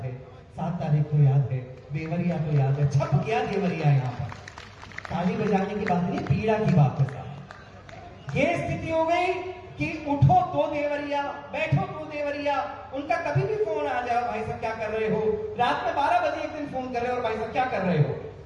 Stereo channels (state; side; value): identical; both; correlation 1.00